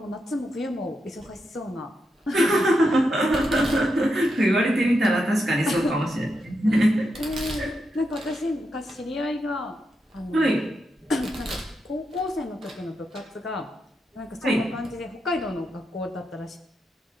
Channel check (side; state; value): both; normal; correlation 0.85